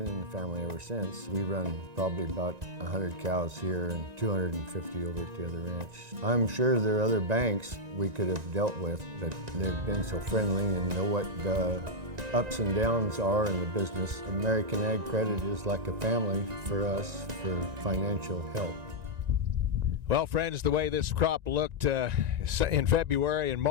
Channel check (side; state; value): left; late; 1.9 ms